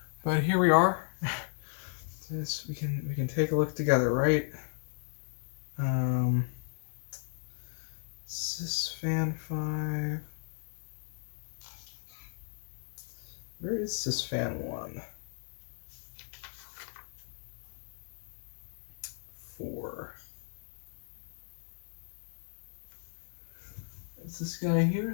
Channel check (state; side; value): silent; right; digital silence